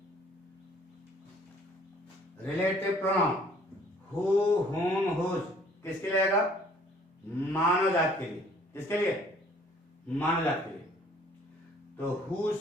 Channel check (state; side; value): normal; both; correlation 0.57